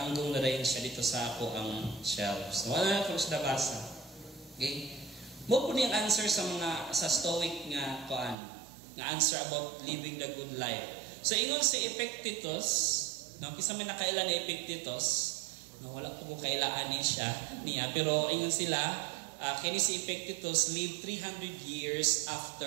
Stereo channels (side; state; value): left; drops out; at 8.3 s